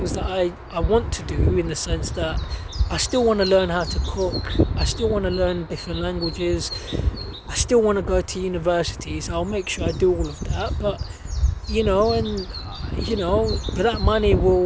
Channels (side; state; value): both; identical; correlation 1.00